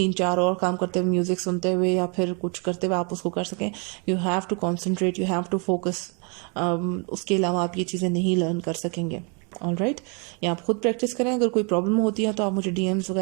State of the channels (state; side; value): quieter; left; 34.3 dB